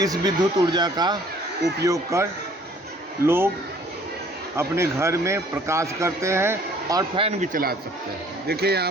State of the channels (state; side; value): normal; both; correlation 0.56